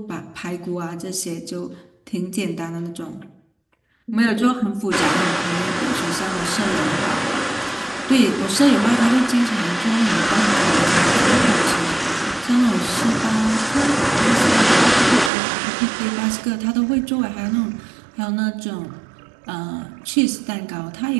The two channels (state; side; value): drops out; left; at 15.3 s